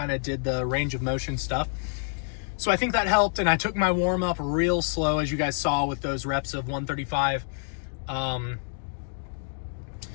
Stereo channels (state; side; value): silent; right; 60 dB below the other